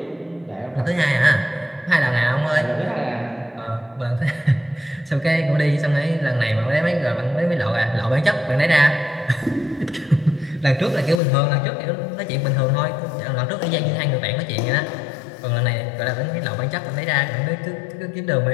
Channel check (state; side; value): drops out; right; at 11.2 s